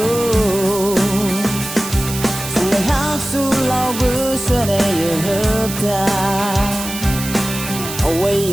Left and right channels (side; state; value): right; noise; hiss, 8 dB below the sound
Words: sang ngày hát su lao bữa xưa đây hợp ta away